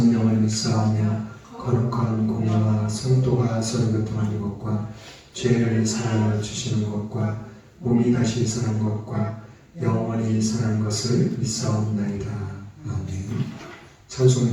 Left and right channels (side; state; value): both; identical; correlation 1.00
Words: 믿사오며 거룩한 공예와 성도가 서로 교통하는 것과 죄를 사하여 주시는 것과 몸이 다시 사는 것과 영원히 사는 것을 믿사옵나이다. 아멘.